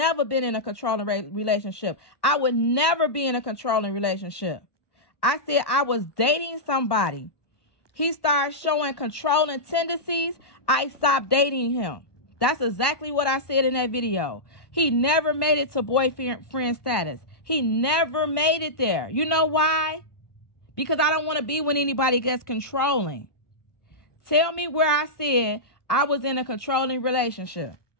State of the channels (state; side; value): late; right; 1.1 ms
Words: been in a controlling relationship. I would never be in a controlling relationship. I said I was dating somebody. He started showing controlling tendencies. I stopped dating him. That's exactly what I said in that video. He never made it to boyfriend status. He never made it there. You know why? Because I don't want to be when anybody gets controlling. Tell me where I said I was in a controlling relationship.